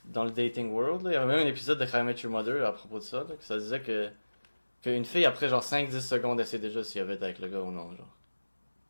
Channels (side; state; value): both; inverted; correlation -1.00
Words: dans le dating world, là, il y avait même un épisode de How I Met Your Mother à propos de ça, là, que ça disait qu'une fille après genre 5-10 secondes elle sait déjà si elle veut être avec le gars ou non, genre.